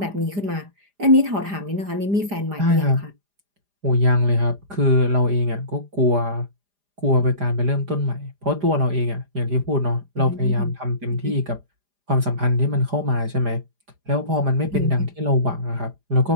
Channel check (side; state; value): left; late; 4.9 ms